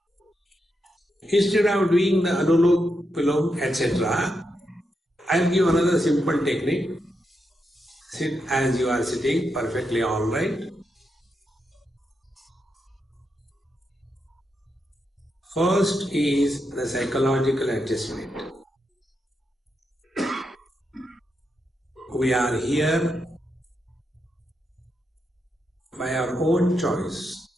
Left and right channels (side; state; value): both; normal; correlation 0.84